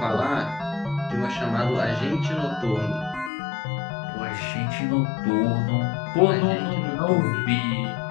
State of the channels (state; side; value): drops out; right; at 3.3 s